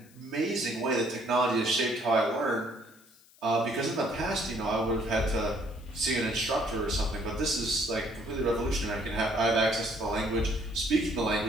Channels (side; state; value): left; noise; hiss, 27 dB below the sound